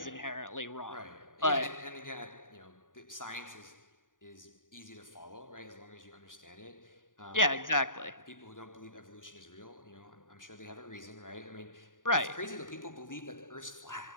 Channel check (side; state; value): right; late; 0.88 ms